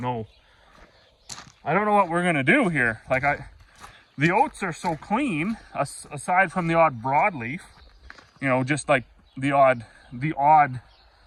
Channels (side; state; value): both; identical; correlation 1.00